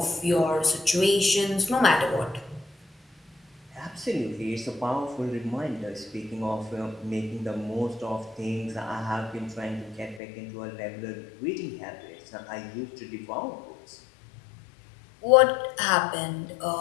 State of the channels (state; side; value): drops out; right; at 10.2 s